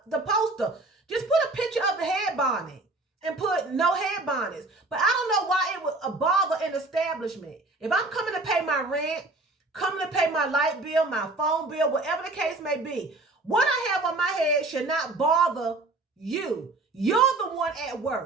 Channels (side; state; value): left; quieter; 3.0 dB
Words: the poster. Just put a picture of the head bonnet and put no head bonnets. But I don't know why it would bother an establishment. If I'm coming to pay my rent, coming to pay my light bill, my phone bill, whatever the case may be, what I have on my head should not bother you. You're the one at